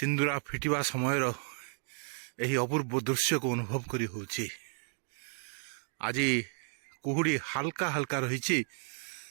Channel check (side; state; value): left; silent; 56 dB below the other